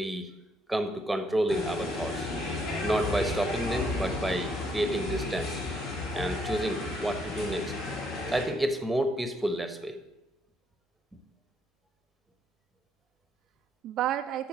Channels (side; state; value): both; normal; correlation 0.71